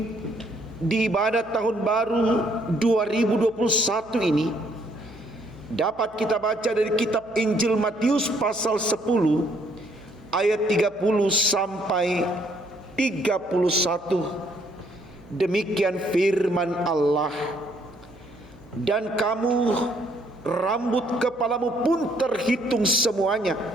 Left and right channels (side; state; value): right; noise; hum, 25 dB below the sound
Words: di ibadah tahun baru 2021 ini dapat kita baca dari kitab Injil Matius pasal 10 ayat 30 sampai 31. Demikian firman Allah. Dan kamu, rambut kepalamu pun terhitung semuanya.